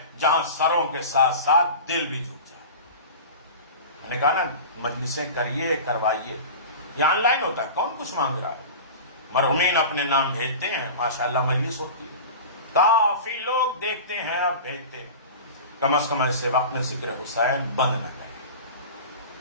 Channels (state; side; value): inverted; both; correlation -0.33